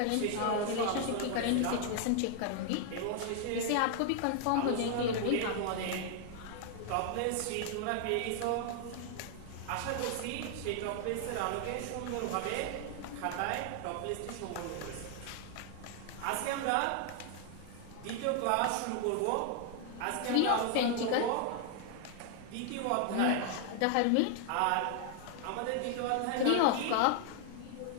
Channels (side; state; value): both; different; correlation 0.00